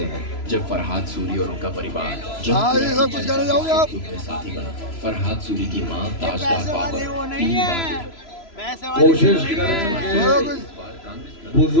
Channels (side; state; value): right; late; 3.0 ms